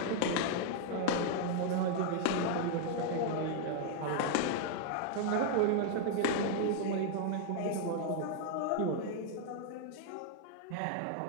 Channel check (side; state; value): both; different; correlation 0.00